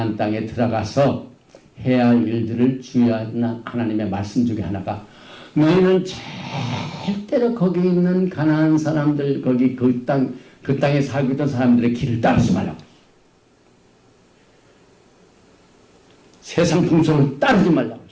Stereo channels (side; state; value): both; identical; correlation 1.00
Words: 땅에 들어가서 해야 할 일들을 주의하는 하나님의 말씀 중에 하나가 너희는 절대로 거기 있는 가나안 사람들 거기 그 땅에 살고 있던 사람들의 길을 따르지 말라고. 세상 풍속을 따르지 말라고.